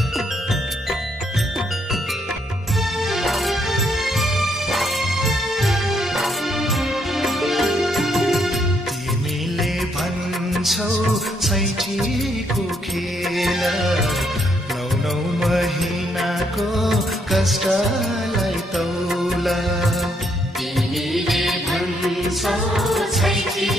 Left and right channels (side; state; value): both; normal; correlation 0.73